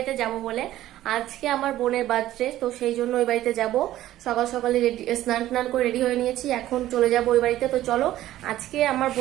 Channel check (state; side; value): quieter; left; 14.1 dB